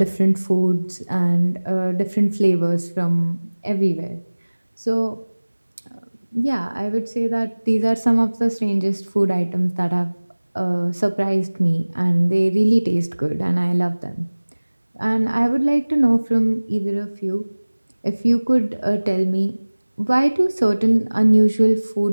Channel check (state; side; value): inverted; both; correlation -1.00